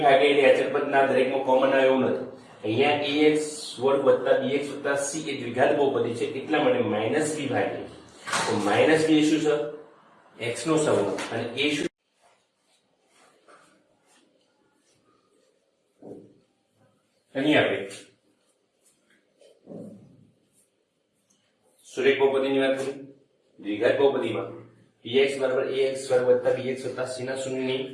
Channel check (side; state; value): both; identical; correlation 1.00